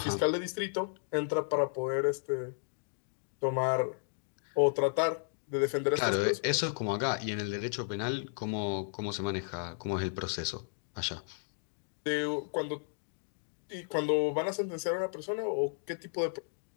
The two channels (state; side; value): silent; right; digital silence